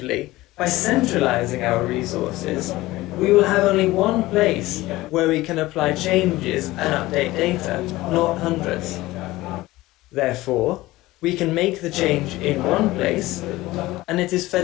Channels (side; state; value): right; quieter; 18.3 dB